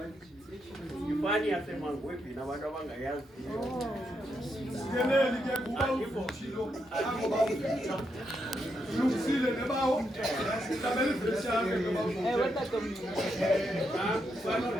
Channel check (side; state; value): both; normal; correlation 0.81